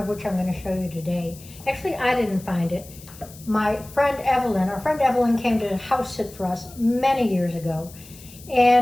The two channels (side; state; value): left; noise; hiss, 20 dB below the sound